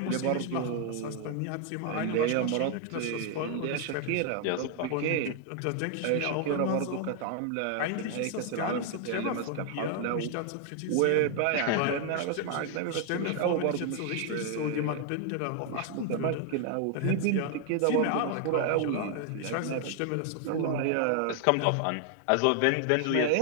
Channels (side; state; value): both; different; correlation 0.00